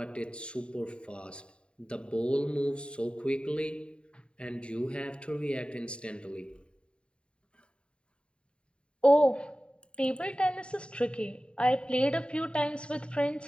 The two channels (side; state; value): right; late; 0.054 ms